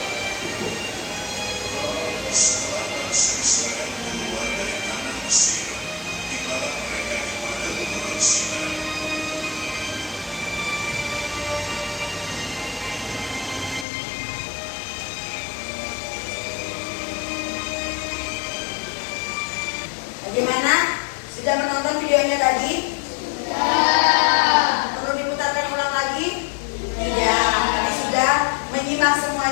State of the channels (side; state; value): right; drops out; at 13.9 s